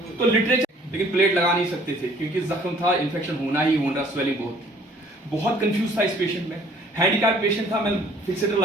तो लिटरेचर, लेकिन प्लेट लगा नहीं सकते थे क्योंकि जख्म था, इन्फेक्शन होना ही होना, स्वेलिंग बहुत कंफ्यूज था इस पेशेंट में। हैंडीकैप पेशेंट था, मैं फिक्सेटर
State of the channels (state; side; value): normal; both; correlation 0.57